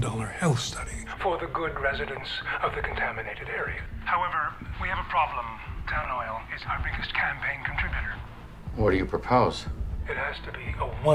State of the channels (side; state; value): both; identical; correlation 1.00